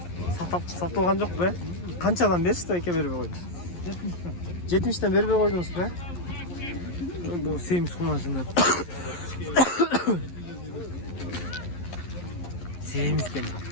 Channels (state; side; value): late; right; 11 ms